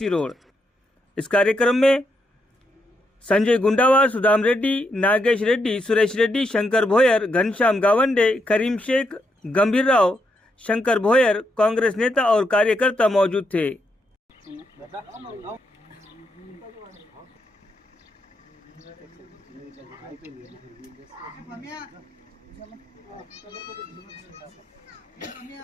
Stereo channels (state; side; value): normal; both; correlation 0.80